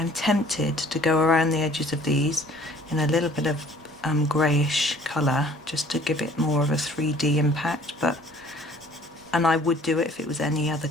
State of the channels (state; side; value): normal; both; correlation 0.54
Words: tempted to go around the edges of these in a little bit of greyish colour, just to give it more of a 3D impact, and I would do it if it was any other